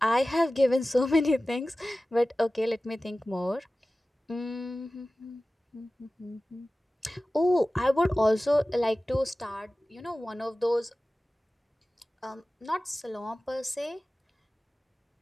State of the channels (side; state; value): both; normal; correlation 0.96